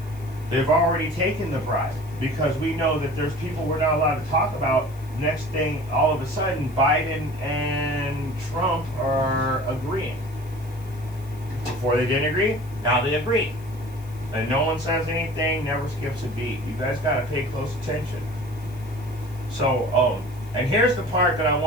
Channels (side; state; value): left; noise; hiss, 25 dB below the sound